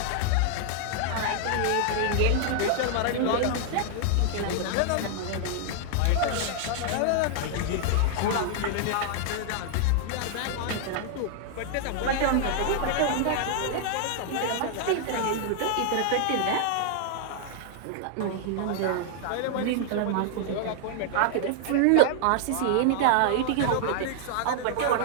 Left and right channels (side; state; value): both; different; correlation 0.00